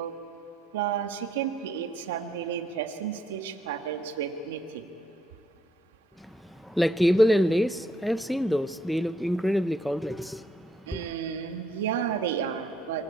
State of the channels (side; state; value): both; normal; correlation 0.70